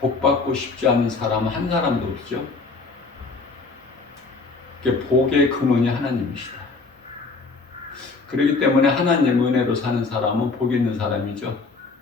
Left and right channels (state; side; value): quieter; right; 4.0 dB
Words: 받고 싶지 않은 사람 한 사람도 없죠. 복의 근원이 하나님이시다. 그렇기 때문에 하나님 은혜로 사는 사람은 복 있는 사람이죠.